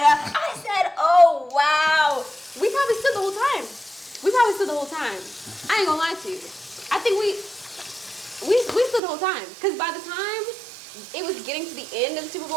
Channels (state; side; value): drops out; left; at 9.0 s